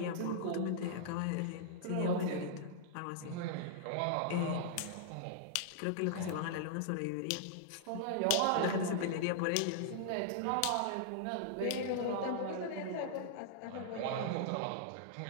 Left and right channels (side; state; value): both; different; correlation -0.01